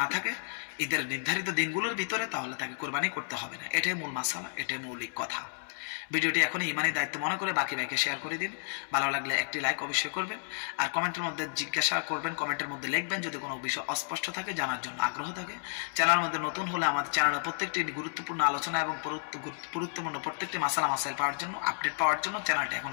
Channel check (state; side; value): silent; right; digital silence